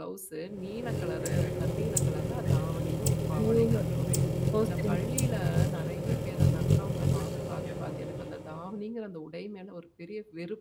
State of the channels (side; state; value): both; identical; correlation 1.00